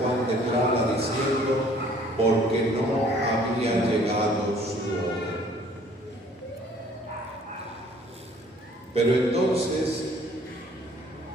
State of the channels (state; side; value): normal; both; correlation 0.57